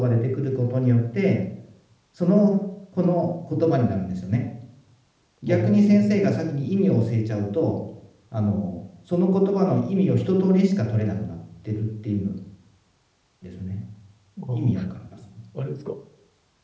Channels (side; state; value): both; identical; correlation 1.00